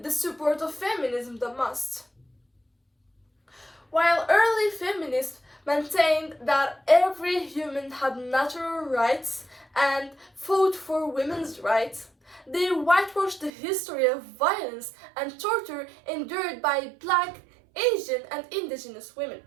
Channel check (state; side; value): drops out; left; at 13.5 s